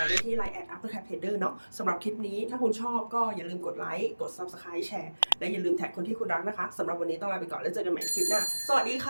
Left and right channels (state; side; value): inverted; both; correlation -1.00